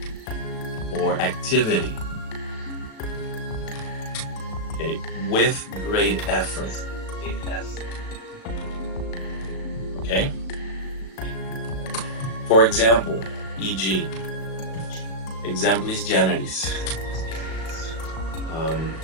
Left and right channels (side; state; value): right; late; 36 ms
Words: or activity, okay, with great effort. Okay? For example, e.g., exemplis generis.